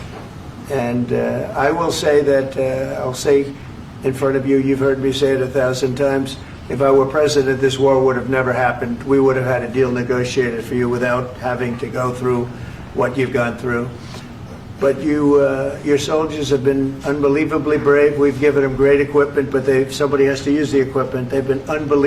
And I will say that, I'll say in front of you, you've heard me say it 1,000 times, if I were president, this war would have never happened. We would have had a deal negotiated for you without having to go through what you've gone through. But your soldiers have been unbelievably brave. We've given them great equipment, but somebody has to use the equipment. They've been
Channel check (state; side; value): identical; both; correlation 1.00